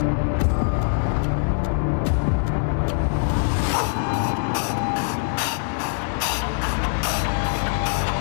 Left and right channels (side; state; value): right; silent; 64 dB below the other